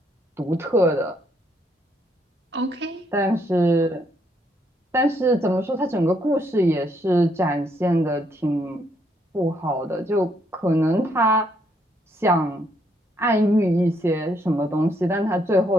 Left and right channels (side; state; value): both; normal; correlation 0.72